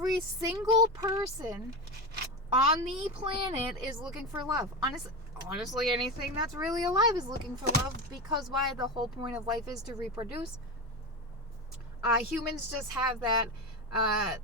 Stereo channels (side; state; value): both; normal; correlation 0.19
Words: single person on the planet is looking for love. Honestly, anything that's really alive is looking for love, because why? The whole point of life is to reproduce. Humans just have that